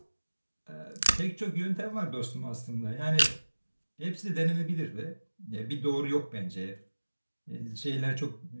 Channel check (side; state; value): both; inverted; correlation -1.00